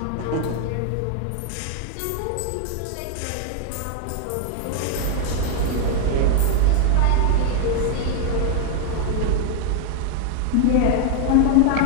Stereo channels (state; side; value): different; both; correlation 0.00